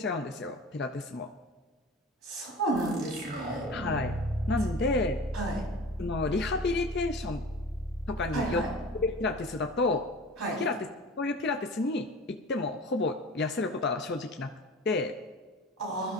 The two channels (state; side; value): normal; both; correlation 0.38